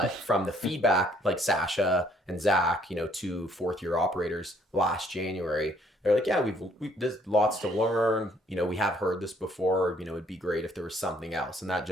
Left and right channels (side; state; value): both; normal; correlation 0.64